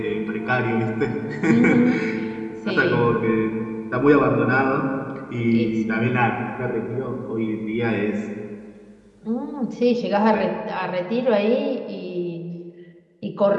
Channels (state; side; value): identical; both; correlation 1.00